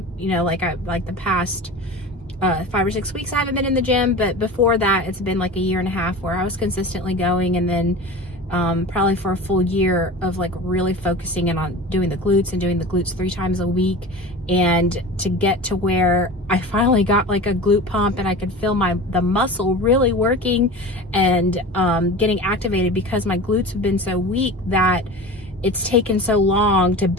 Like the past 5 or 6 weeks I haven't been in the gym, but before that it's been like a year and a half where I was consistently going, and then probably for a full year of like really focusing in on doing the glutes and doing the glutes 3 times a week, and to get to where I finally got like a glute pump and I could feel the muscle really working and getting activated, because my glutes have been so weak that it's taken so long to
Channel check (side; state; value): both; normal; correlation 0.34